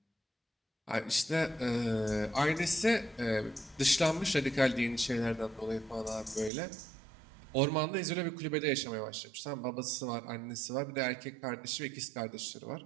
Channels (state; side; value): drops out; left; at 6.5 s